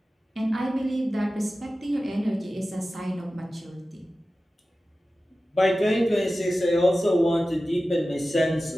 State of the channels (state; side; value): normal; both; correlation 0.95